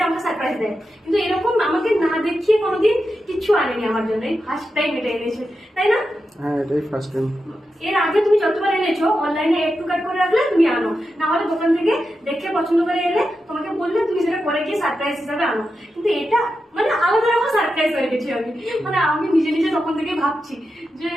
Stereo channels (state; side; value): normal; both; correlation 0.89